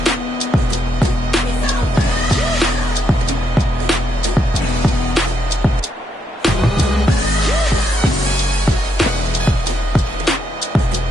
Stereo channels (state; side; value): normal; both; correlation 0.78